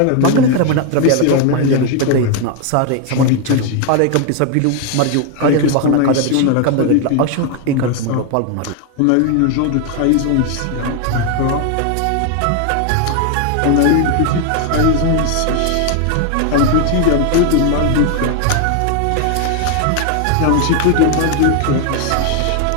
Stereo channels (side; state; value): both; different; correlation 0.01